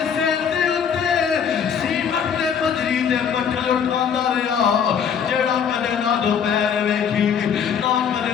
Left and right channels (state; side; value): quieter; right; 7.5 dB